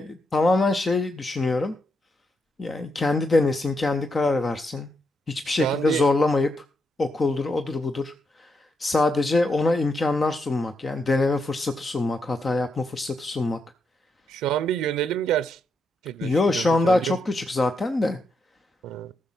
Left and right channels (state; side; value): normal; both; correlation 0.81